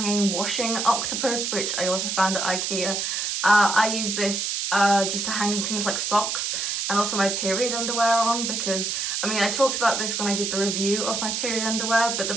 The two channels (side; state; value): right; noise; hiss, 1 dB below the sound